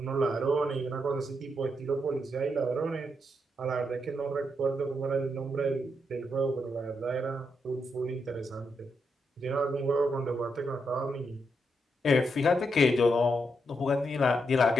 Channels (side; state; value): both; normal; correlation 0.81